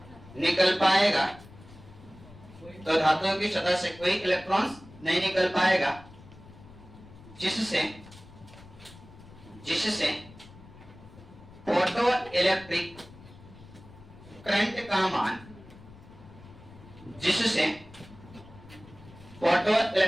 निकल पाएगा, तो धातु की सतह से कोई इलेक्ट्रॉन नहीं निकल पाएगा, जिससे फोटो इलेक्ट्रिक करंट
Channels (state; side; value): noise; left; rumble, 20 dB below the sound